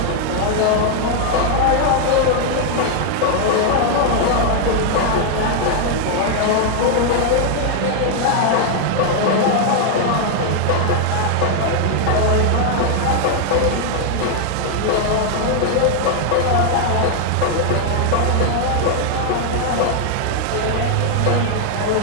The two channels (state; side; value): different; both; correlation 0.00